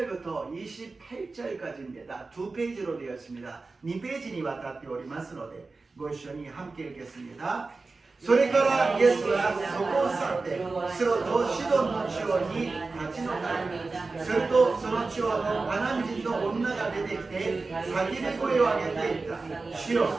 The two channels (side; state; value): left; quieter; 3.8 dB